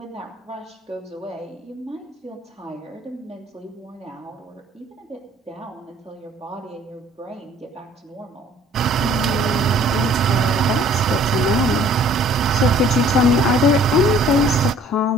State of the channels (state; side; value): normal; both; correlation 0.56